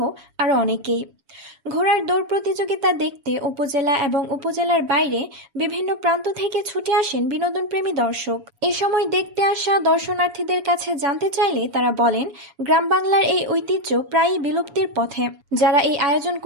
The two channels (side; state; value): left; late; 7.1 ms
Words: আরও অনেকেই। ঘোড়ার দৌড় প্রতিযোগিতা দেখতে উপজেলা এবং উপজেলার বাইরে বিভিন্ন প্রান্ত থেকে ছুটে আসেন বিনোদনপ্রেমী দর্শক। এ সময় দেখতে আসা দর্শনার্থীদের কাছে জানতে চাইলে তারা বলেন, গ্রাম বাংলার এই ঐতিহ্য প্রায়ই বিলুপ্তির পথে। যারা এই আয়োজন